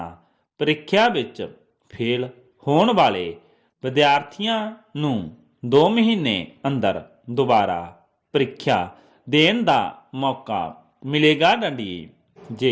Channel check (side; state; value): both; identical; correlation 1.00